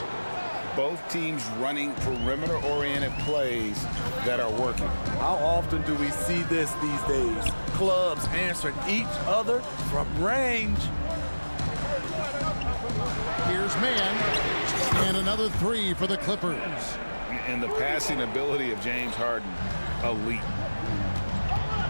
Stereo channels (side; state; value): both; inverted; correlation -1.00